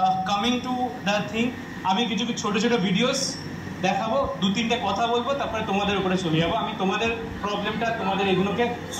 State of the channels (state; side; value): identical; both; correlation 1.00